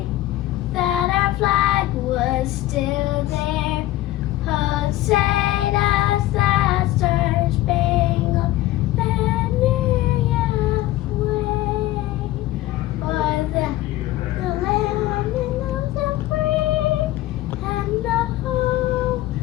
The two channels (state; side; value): quieter; right; 15.9 dB